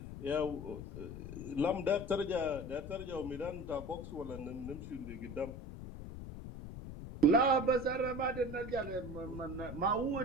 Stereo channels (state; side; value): noise; left; rumble, 9 dB below the sound